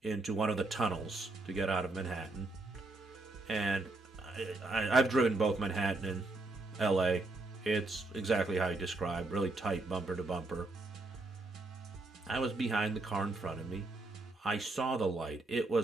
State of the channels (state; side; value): quieter; left; 3.1 dB